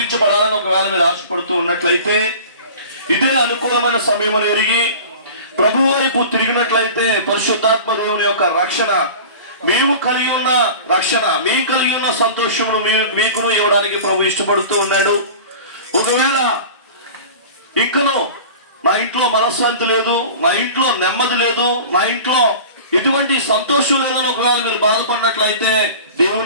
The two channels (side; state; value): both; inverted; correlation -0.38